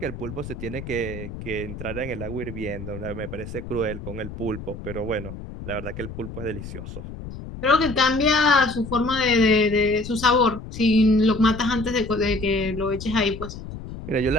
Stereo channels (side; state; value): left; noise; rumble, 11 dB below the sound